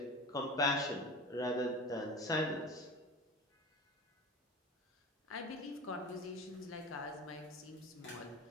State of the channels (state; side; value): normal; both; correlation 0.32